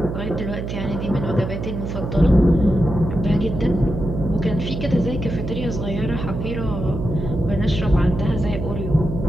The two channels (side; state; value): right; noise; hum, 5 dB below the sound